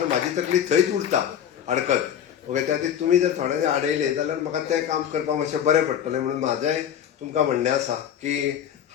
म्हाजी तकली थंयच उरता अडकत. ओके, त्या खातीर तुमी जर थोडे आडयले जाल्यार म्हाका तें काम करपाक मातशें बरें पडटलें. म्हणून म्हाजें तुमकां म्हणणें आसा की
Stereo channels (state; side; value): quieter; right; 9.4 dB